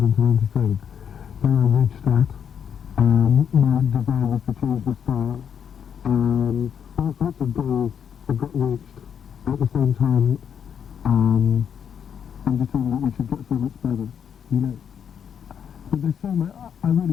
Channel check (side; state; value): right; quieter; 8.0 dB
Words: and to learn to sing. Then I reached that. My desire was to change the style. All sorts of goals have got reached. At the same time, I'm just saying that we should get so much better, you know. But there's so much, I really